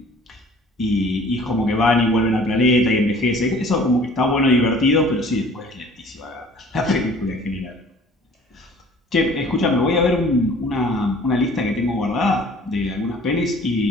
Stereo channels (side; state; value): both; normal; correlation 0.50